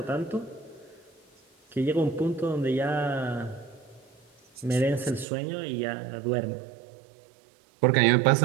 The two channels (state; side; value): drops out; left; at 5.2 s